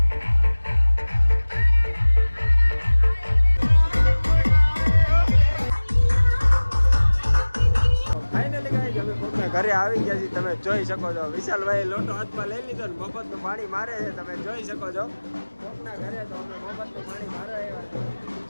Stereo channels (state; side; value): inverted; both; correlation -1.00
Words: ઘરે આવી ગયા છીએ, તમે જોઈ શકો છો. વિશાલભાઈ લોટો હાથમાં લઈ લીધો ને મફતનું પાણી મારે છે, તમે જોઈ શકો છો. કોકના ઘરે તો અમે મફતનું પાણી મારવા આવ્યા છે.